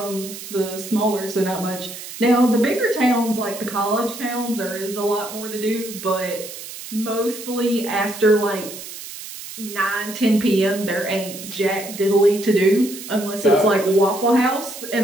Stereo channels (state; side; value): noise; right; hiss, 12 dB below the sound